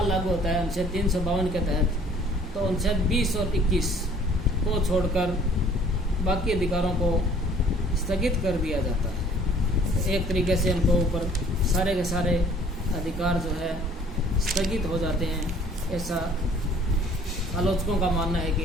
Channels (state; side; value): normal; both; correlation 0.55